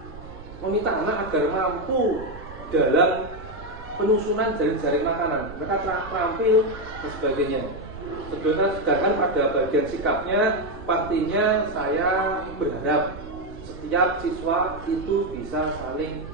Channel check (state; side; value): noise; right; rumble, 15 dB below the sound